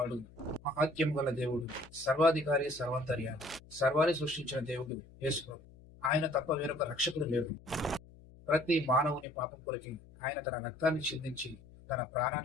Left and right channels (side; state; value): left; noise; hum, 22 dB below the sound